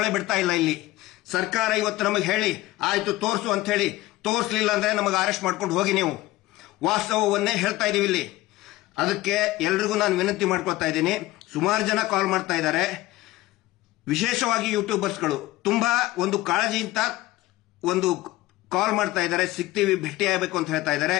ಬಿಡ್ತಾ ಇಲ್ಲ. ಇಲ್ಲಿ ಸರ್ಕಾರ ಇವತ್ತು ನಮಗೆ ಹೇಳಿ ಆಯ್ತು ತೋರಿಸು ಅಂತ ಹೇಳಿ, ತೋರಿಸಲಿಲ್ಲ ಅಂದ್ರೆ ನಮಗೆ ಅರೆಸ್ಟ್ ಮಾಡ್ಕೊಂಡು ಹೋಗಿ. ನೀವು ವಾಸ್ತವವನ್ನೇ ಹೇಳ್ತಾ ಇದೀವಿ ಇಲ್ಲಿ. ಅದಕ್ಕೆ ಎಲ್ರಿಗೂ ನಾನು ವಿನಂತಿ ಮಾಡ್ಕೊಳ್ತಾ ಇದ್ದೀನಿ. ಸುಮಾರು ಜನ ಕಾಲ್ ಮಾಡ್ತಾ ಇದ್ದಾರೆ, ವಿಶೇಷವಾಗಿ ಯೂಟ್ಯೂಬರ್ಸ್ಗಳು ತುಂಬಾ ಒಂದು ಕಾಳಜಿಯಿಂದ ಒಂದು ಕಾಲ್ ಮಾಡ್ತಾ ಇದ್ದಾರೆ, ಸಿಗ್ತೀವಿ, ಭೇಟಿ ಆಗಬೇಕು ಅಂತ ಹೇಳ್ತಾ ಇದ್ದಾರೆ.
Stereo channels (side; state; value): right; quieter; 18.0 dB